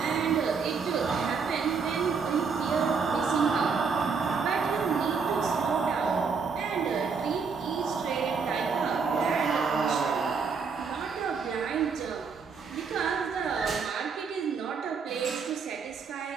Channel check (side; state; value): left; quieter; 5.4 dB